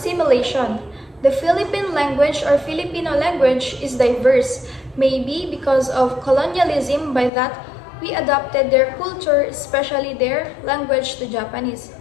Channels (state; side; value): drops out; right; at 7.3 s